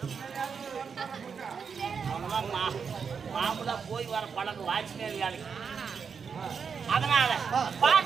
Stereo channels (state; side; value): quieter; left; 6.2 dB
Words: மாமூலா போய் வர பழக்கம் வாட்ச்மேன் வேலைக்கு. அதனால